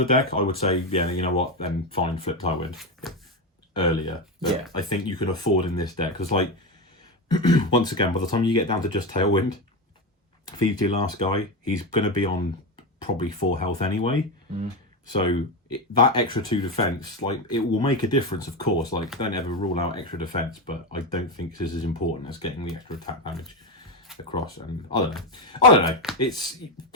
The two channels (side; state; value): both; normal; correlation 0.14